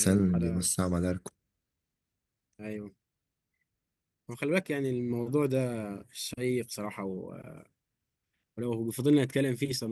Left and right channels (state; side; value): identical; both; correlation 1.00